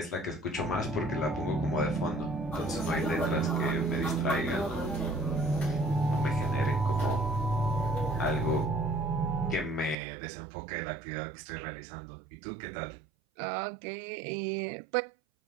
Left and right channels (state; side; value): drops out; left; at 10.0 s